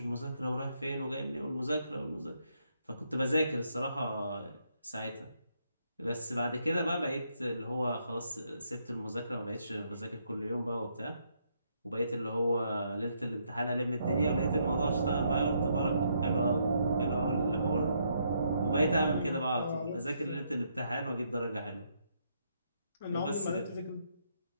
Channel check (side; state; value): both; inverted; correlation -0.75